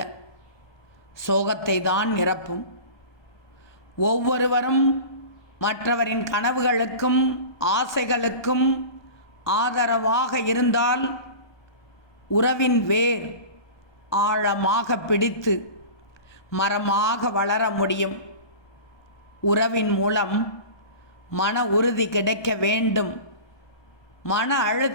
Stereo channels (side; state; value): right; late; 1.2 ms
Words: சோகத்தை தான் நிரப்பும். ஒவ்வொருவரும் மற்றவரின் கனவுகளுக்கும் ஆசைகளுக்கும் ஆதரவாக இருந்தால் உறவின் வேர் ஆழமாக பிடித்து மரமாக வளர முடியும். உறவின் மூலம் மன உறுதி கிடைக்க வேண்டும். மன